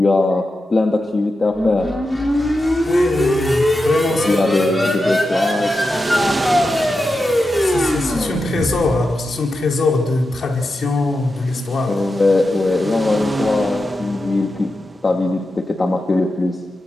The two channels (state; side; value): normal; both; correlation 0.90